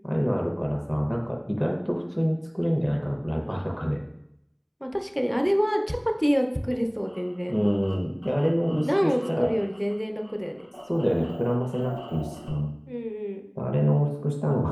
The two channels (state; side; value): identical; both; correlation 1.00